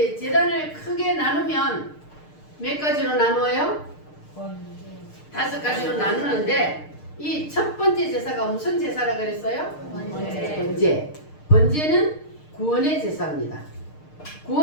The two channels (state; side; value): late; right; 6.6 ms